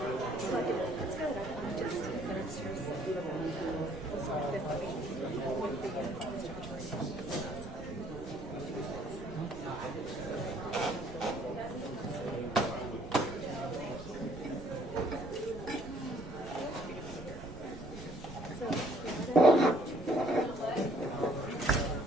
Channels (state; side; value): normal; both; correlation 0.62